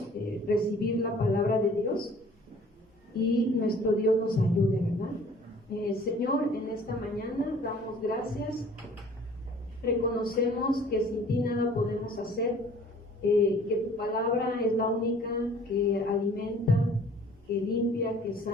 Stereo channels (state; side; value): normal; both; correlation 0.52